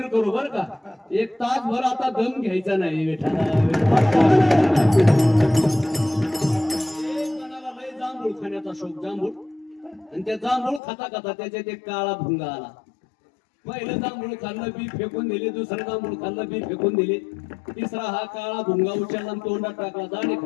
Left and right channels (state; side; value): drops out; right; at 10.8 s